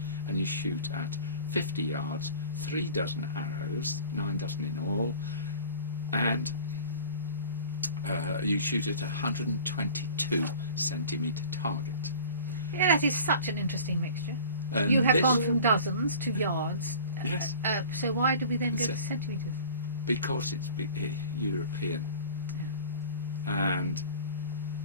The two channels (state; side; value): inverted; both; correlation -0.42